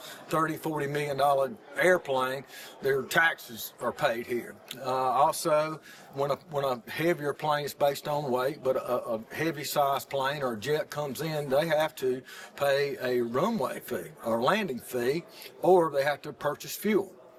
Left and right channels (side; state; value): both; identical; correlation 1.00